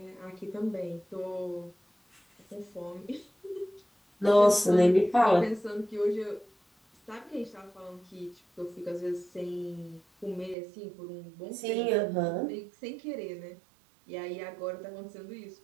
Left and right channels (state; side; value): drops out; left; at 10.6 s